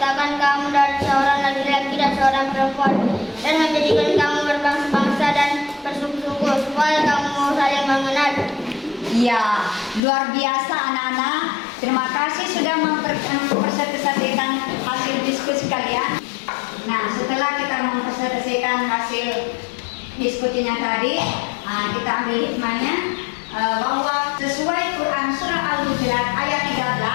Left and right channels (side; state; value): right; drops out; at 10.0 s